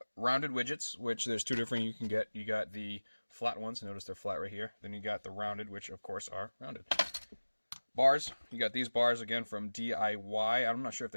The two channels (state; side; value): inverted; both; correlation -1.00